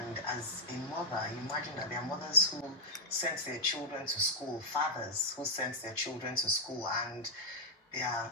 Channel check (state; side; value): normal; both; correlation -0.04